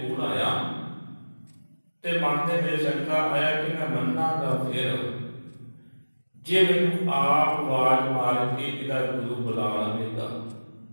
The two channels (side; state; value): both; inverted; correlation -1.00